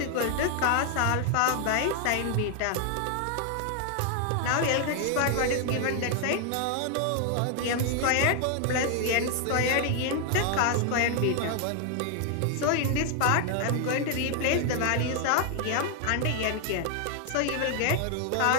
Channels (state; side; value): different; both; correlation 0.00